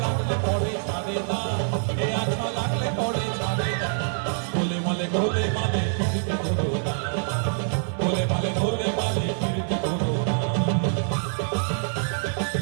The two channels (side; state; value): left; silent; digital silence